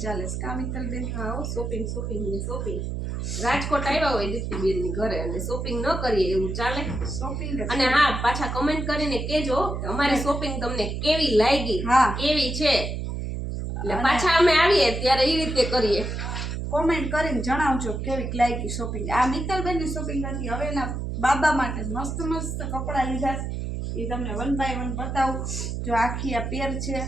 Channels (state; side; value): noise; right; hum, 4 dB below the sound